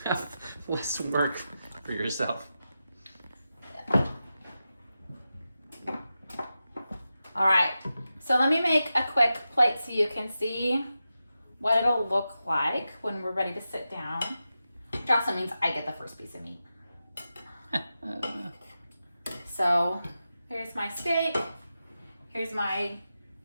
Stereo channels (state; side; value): inverted; both; correlation -0.91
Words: have less work for yourself. All right, so let me make a quick plate so you can see what it'll look like when we're ready to sit down. Which also means I get the first piece of meat. So here's my steak, here's my